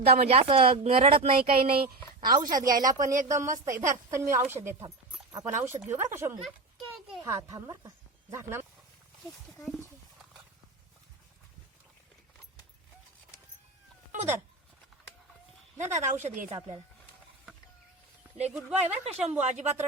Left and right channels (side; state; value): left; quieter; 3.3 dB